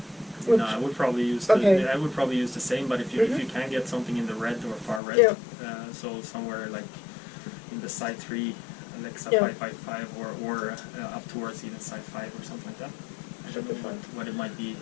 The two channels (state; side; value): drops out; right; at 5.0 s